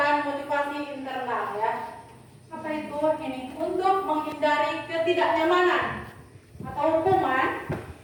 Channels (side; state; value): both; identical; correlation 1.00